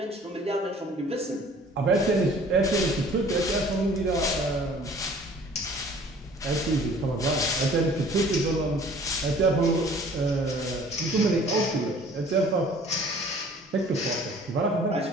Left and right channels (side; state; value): both; normal; correlation 0.51